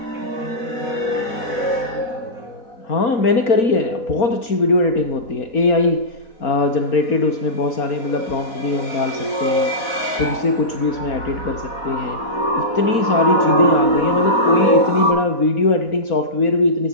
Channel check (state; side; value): late; right; 4.2 ms